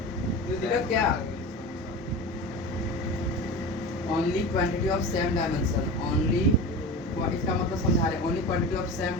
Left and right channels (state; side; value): normal; both; correlation 0.30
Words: दिक्कत क्या? only quantity of same dimension, only इसका मतलब समझा रहे, only quantity of same